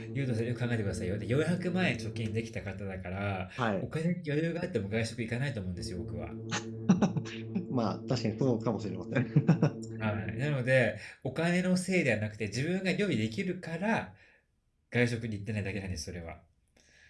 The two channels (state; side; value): identical; both; correlation 1.00